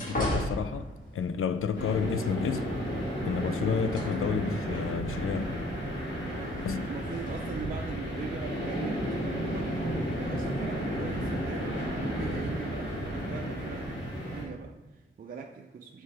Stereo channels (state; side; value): normal; both; correlation 0.56